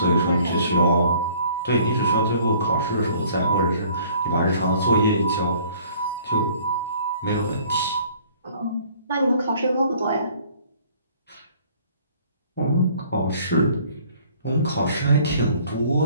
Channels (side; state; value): both; inverted; correlation -0.56